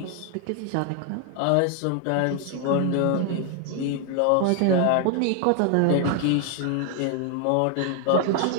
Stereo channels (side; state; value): both; different; correlation 0.00